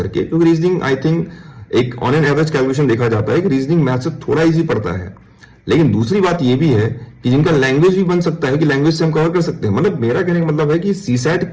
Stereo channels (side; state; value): both; identical; correlation 1.00